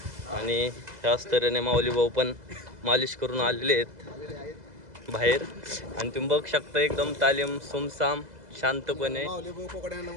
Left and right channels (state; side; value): late; left; 2.0 ms